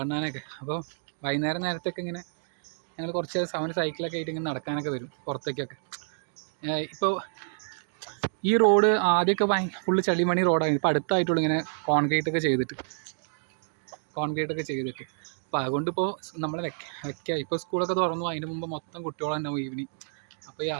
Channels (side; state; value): left; silent; digital silence